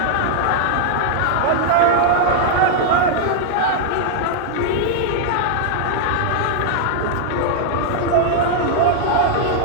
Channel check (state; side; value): different; both; correlation -0.01